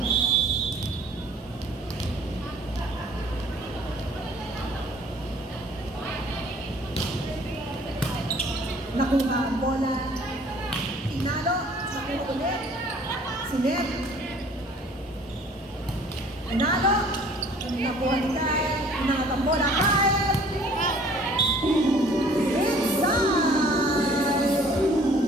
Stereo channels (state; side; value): normal; both; correlation 0.54